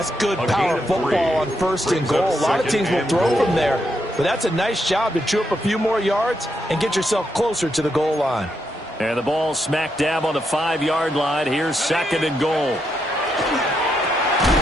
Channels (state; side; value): normal; both; correlation 0.81